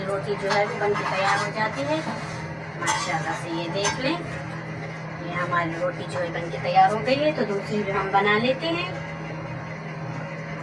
रोटी जो है वो बनके तैयार हो जाती है। माशाल्लाह से ये देख लें ये हमारी रोटी जो है बनके तैयार हो गई है। तो दूसरी भी हम बना लेते हैं।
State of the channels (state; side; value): identical; both; correlation 1.00